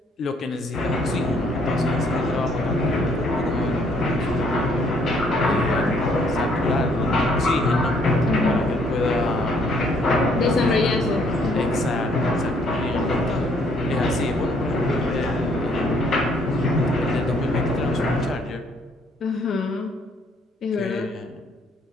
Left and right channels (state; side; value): normal; both; correlation 0.66